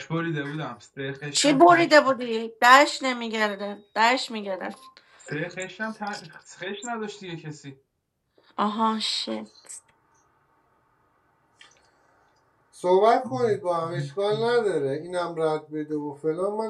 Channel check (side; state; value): both; identical; correlation 1.00